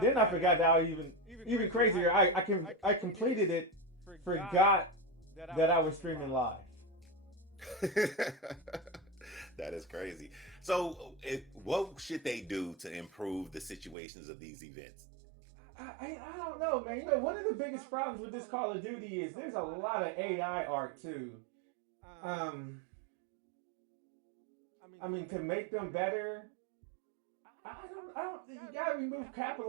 then I forgot that even crazier. I completed it, forgot that I was streaming live. That is crazy. So, what should they do to improve the situations of these events? I don't know, man. You know, one of the biggest problems with this Call of Duty is there's a lot of AI art too. I mean, to make them better, I don't. You gotta remove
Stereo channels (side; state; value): left; drops out; at 14.0 s